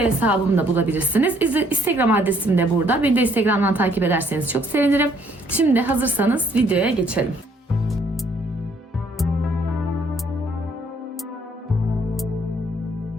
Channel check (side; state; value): both; normal; correlation 0.65